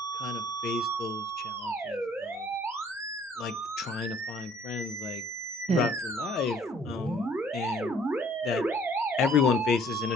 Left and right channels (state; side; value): normal; both; correlation 0.58